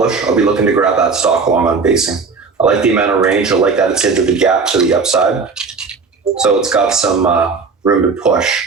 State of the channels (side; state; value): left; quieter; 4.8 dB